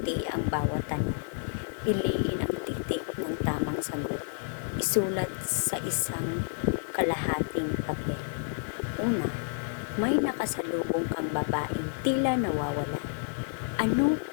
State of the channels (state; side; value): silent; right; 58 dB below the other